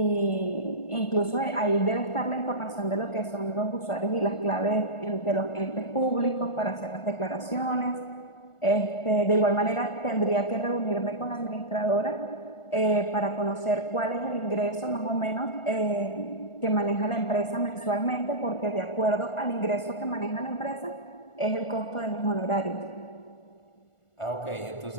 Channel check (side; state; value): right; late; 1.4 ms